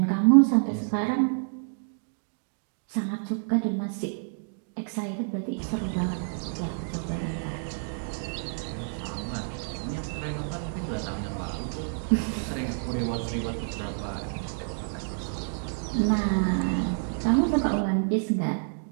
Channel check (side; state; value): left; silent; digital silence